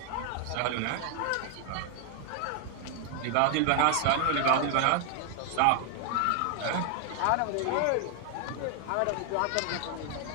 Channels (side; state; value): both; different; correlation 0.00